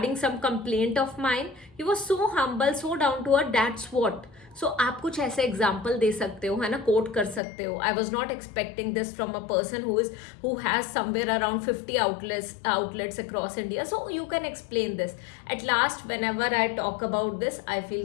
some complaint of mine, he was so humble, so down to earth. That's what. So आप कुछ ऐसे एग्जाम्पल दे सकते हो, है ना, कोट कर सकते हो. आई was not expecting this from a person who has somewhere around 50 outlets across India. So you can explain this. At last, whenever I talk about this, I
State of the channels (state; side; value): drops out; right; at 7.4 s